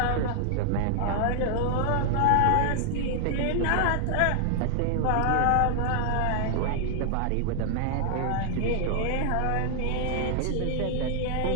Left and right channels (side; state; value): both; different; correlation 0.00